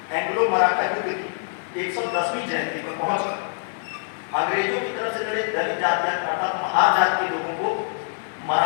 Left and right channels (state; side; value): silent; right; 62 dB below the other